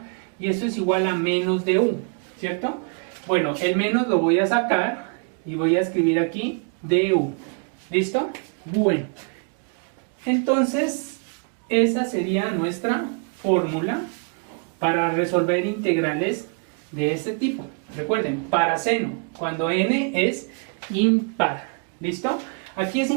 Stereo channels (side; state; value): left; quieter; 39.8 dB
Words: y esto es igual a menos de u, ¿cierto? Bueno, el menos lo voy a sacar y voy a escribir aquí du. ¿Listo? Bueno, entonces esa sería nuestra fórmula para resolver integrales de este tipo. Recuerden, para seno, cuando n es impar. ¿Listo? Aquí es